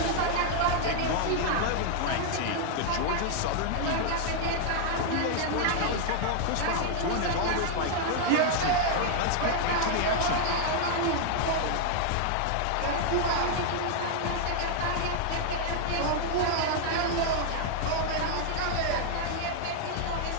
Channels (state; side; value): different; both; correlation 0.00